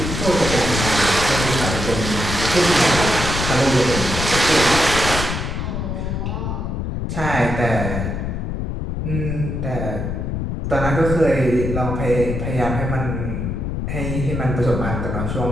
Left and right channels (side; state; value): left; noise; rumble, 3 dB below the sound